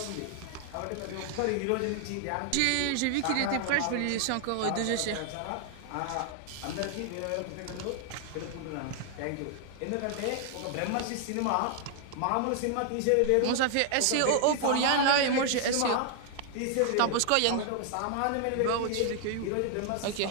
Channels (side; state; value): both; different; correlation 0.00